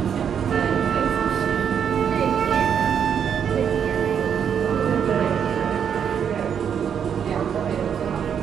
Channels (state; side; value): quieter; left; 8.0 dB